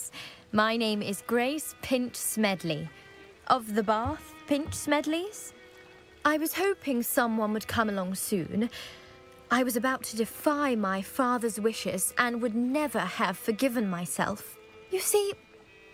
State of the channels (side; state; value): both; identical; correlation 1.00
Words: My name is Grace Pinch Smedley. Of the Bath Pinch Smedleys? I was hoping someone would come along soon. I was about to defy my father's wishes and would never have forgiven myself. You see,